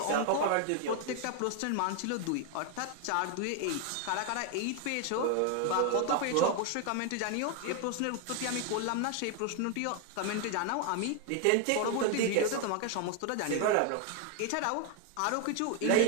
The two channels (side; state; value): both; different; correlation 0.01